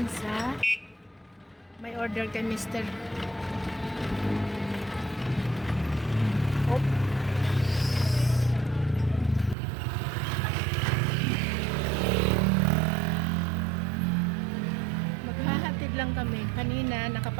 sa may order kay Mr. Oh. Maghahatid lang kami. Kanina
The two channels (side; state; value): left; drops out; at 9.6 s